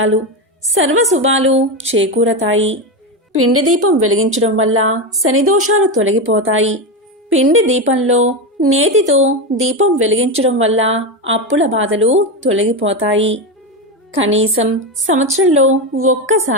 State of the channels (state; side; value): normal; both; correlation 0.14